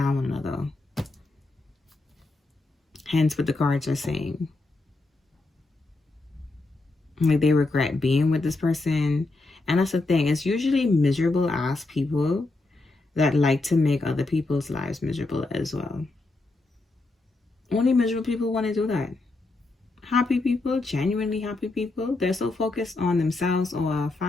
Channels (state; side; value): quieter; right; 3.2 dB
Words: one another. Hence what the cards are saying. Like, they regret being with this person. And that's the thing. It's usually miserable ass people that like to make other people's lives miserable as well. Only miserable people want to do that. Happy people, genuinely happy people, they're so focused on themselves or